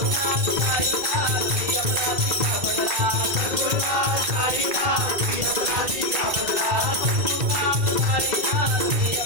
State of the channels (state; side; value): late; left; 2.3 ms